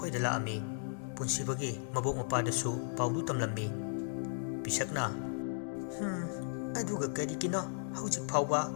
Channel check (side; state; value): right; silent; digital silence